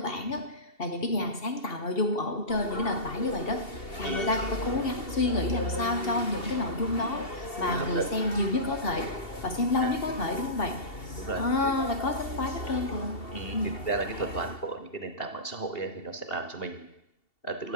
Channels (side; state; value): right; late; 2.7 ms